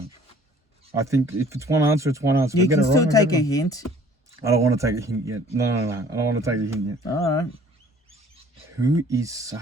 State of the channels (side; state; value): both; normal; correlation 0.54